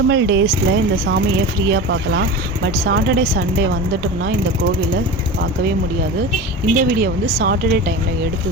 டேஸில் இந்த சாமியை ஃப்ரீயாக பார்க்கலாம். பட் சாட்டர்டே சண்டே வந்துட்டோம்னா இந்த கோவிலை பார்க்கவே முடியாது. இந்த வீடியோ வந்து சாட்டர்டே டைமில்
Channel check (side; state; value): both; normal; correlation 0.29